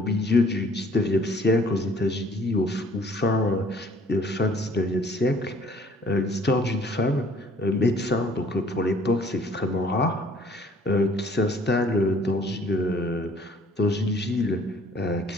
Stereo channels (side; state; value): both; normal; correlation 0.57